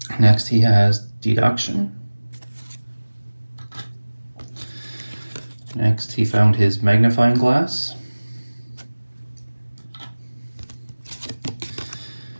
Next he has deduction. Next he found his magnifying glass.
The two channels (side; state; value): both; inverted; correlation -1.00